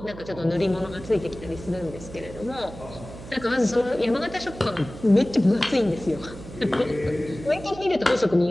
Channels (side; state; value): right; noise; hum, 14 dB below the sound